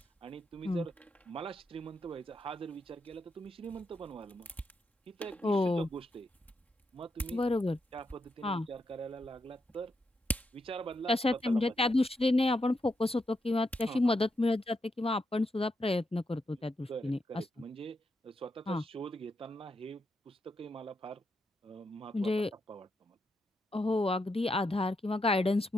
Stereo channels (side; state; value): both; normal; correlation 0.82